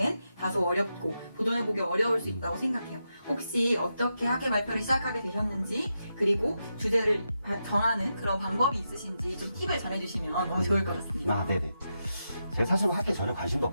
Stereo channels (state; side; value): inverted; both; correlation -0.86